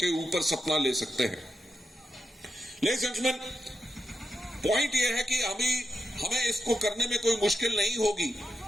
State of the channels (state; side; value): normal; both; correlation 0.85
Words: ऊपर सपना ले सकते हैं। लेडीज एंड जेंटलमैन, पॉइंट ये है कि हमें इसको करने में कोई मुश्किल नहीं होगी,